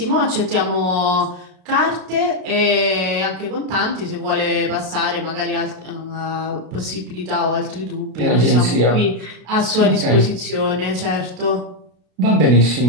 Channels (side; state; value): left; late; 32 ms